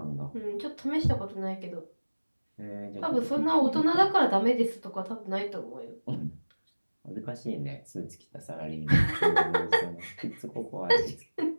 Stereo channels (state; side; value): inverted; both; correlation -1.00